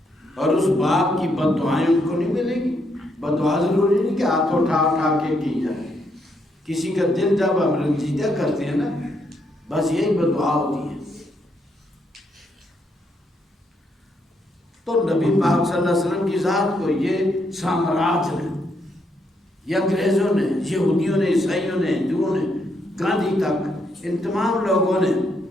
اور اس باپ کی بد دعائیں ان کو نہیں ملے گی۔ بد دعا ضروری نہیں کہ ہاتھ اٹھا کے کی جائے، کسی کا دل جب ہم رنجیدہ کرتے ہیں نا، بس یہی بد دعا ہوتی ہے۔ تو نبی پاک صلی اللہ علیہ وسلم کی ذات کو یہ سامراج نے، یہ انگریزوں نے، یہودیوں نے، عیسائیوں نے، ہندوؤں نے، گاندھی تک، ان تمام لوگوں نے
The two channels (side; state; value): both; normal; correlation 0.76